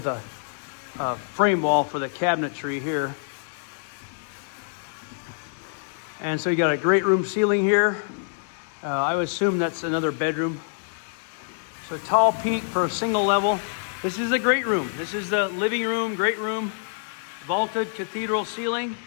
a frame wall for the cabinetry here. And so you got a great room ceiling here. I would assume that's another bedroom. So a tall peak for a single level. This is the great room. This is the living room, great room. Vaulted cathedral ceiling.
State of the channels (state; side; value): silent; right; digital silence